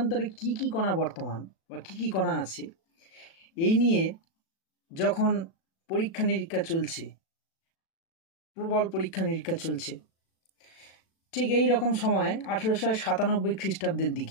কি কি কণা বর্তমান বা কি কি কণা আছে, এই নিয়ে যখন পরীক্ষা নিরীক্ষা চলছে, প্রবল পরীক্ষা নিরীক্ষা চলছে, ঠিক এই রকম সময় 1897 খ্রিস্টাব্দের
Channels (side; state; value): right; late; 36 ms